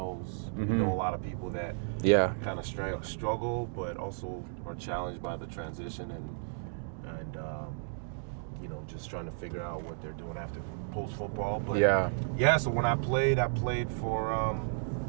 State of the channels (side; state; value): left; silent; digital silence